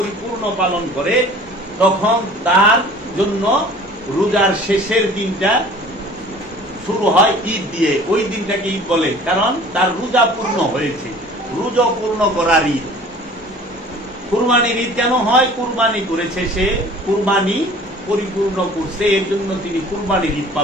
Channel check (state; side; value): normal; both; correlation 0.47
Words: পালন করে, তখন তার জন্য রোজার শেষের দিনটা শুরু হয় ঈদ দিয়ে। ওই দিনটাকে ঈদ বলে, কারণ তার রোজা পূর্ণ হয়েছে, রোজা পূর্ণ করার ঈদ। কুরবানির ঈদ কেন হয়? কুরবানি করেছে সে, কুরবানি পরিপূর্ণ করছে, এর জন্য তিনি কুরবানির ঈদ